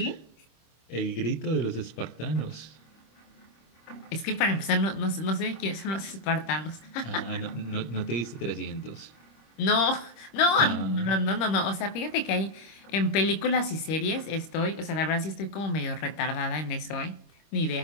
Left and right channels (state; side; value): late; right; 25 ms